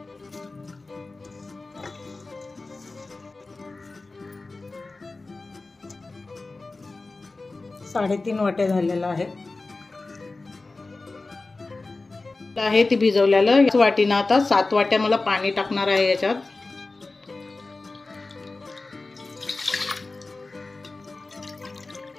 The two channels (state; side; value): quieter; right; 3.4 dB